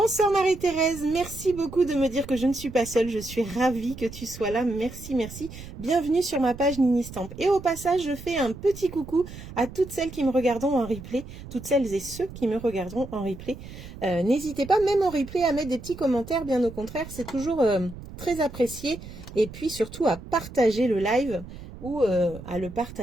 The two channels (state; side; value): noise; right; rumble, 14 dB below the sound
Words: Marie-Thérèse, merci beaucoup de me dire que je ne suis pas seule, je suis ravie que tu sois là, merci, merci. Bienvenue sur ma page Nini Stamp. Et au passage, je fais un petit coucou à toutes celles qui me regarderont en replay, toutes celles et ceux qui me regarderont en replay. N'hésitez pas, même en replay, à mettre des petits commentaires, bien au contraire, c'est toujours très apprécié. Et puis surtout à partager le live ou à le